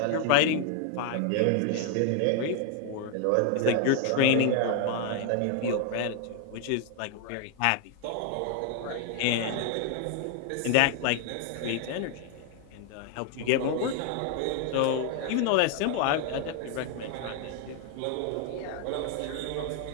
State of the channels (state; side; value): different; both; correlation 0.00